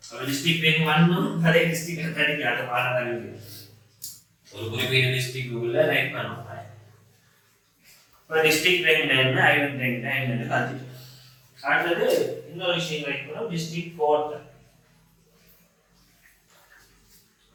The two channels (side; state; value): both; identical; correlation 1.00